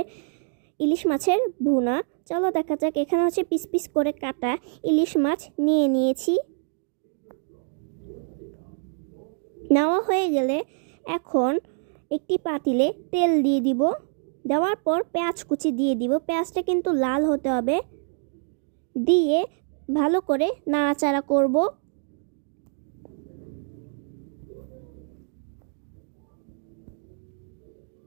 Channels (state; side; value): silent; left; 58 dB below the other